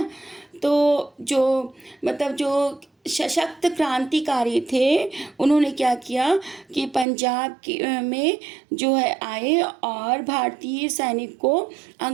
तो जो सशक्त क्रांतिकारी थे, उन्होंने क्या किया कि पंजाब में जो है आए और भारतीय सैनिक को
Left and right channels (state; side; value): drops out; left; at 7.1 s